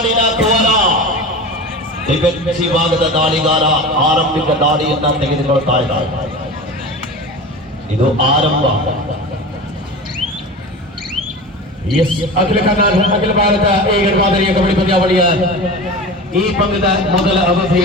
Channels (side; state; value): both; normal; correlation 0.31